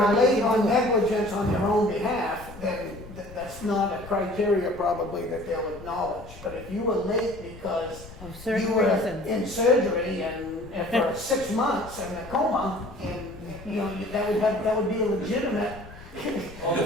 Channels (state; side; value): noise; left; rumble, 17 dB below the sound